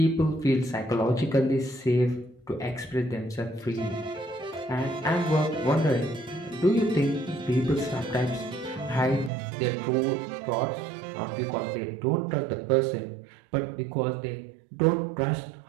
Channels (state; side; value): drops out; left; at 9.3 s